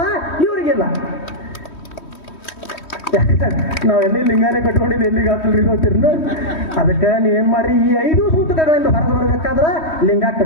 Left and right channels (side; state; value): right; late; 3.1 ms